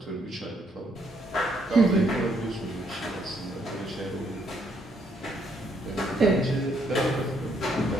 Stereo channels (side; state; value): both; normal; correlation 0.71